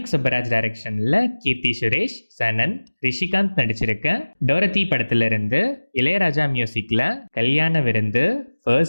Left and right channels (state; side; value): inverted; both; correlation -1.00